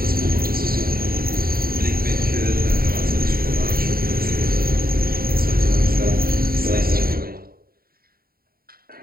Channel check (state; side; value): late; left; 0.43 ms